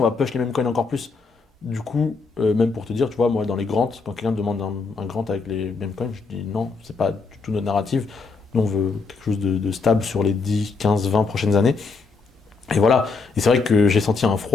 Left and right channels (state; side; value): quieter; right; 4.4 dB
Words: va push les mêmes coins encore plus. Du coup, même pour te dire, tu vois, moi dans les grants, quand quelqu'un me demande un grant avec les mêmes coins, je dis non, c'est pas du tout notre narrative. Nous on veut quelque chose de stable sur les 10, 15, 20 prochaines années. Et voilà. Et c'est vrai que j'ai senti un